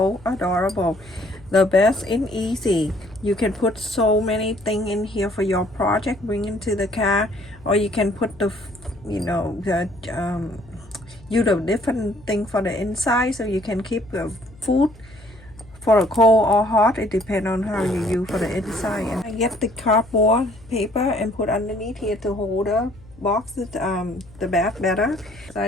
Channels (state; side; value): noise; left; hum, 23 dB below the sound